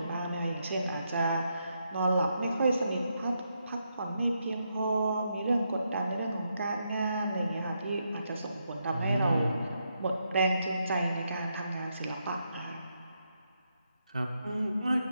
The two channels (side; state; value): both; inverted; correlation -0.81